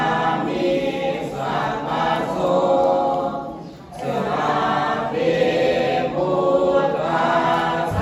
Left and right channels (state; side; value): identical; both; correlation 1.00